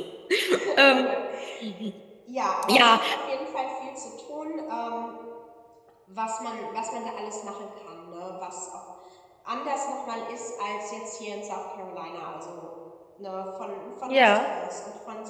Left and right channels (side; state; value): both; identical; correlation 1.00